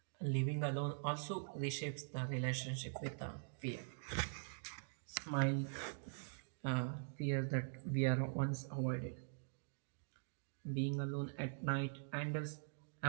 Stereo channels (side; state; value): left; silent; digital silence